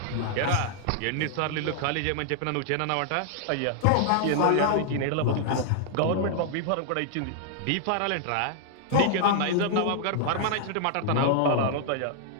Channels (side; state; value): both; different; correlation -0.01